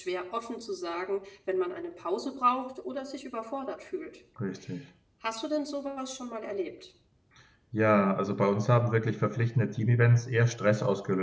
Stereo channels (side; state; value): both; identical; correlation 1.00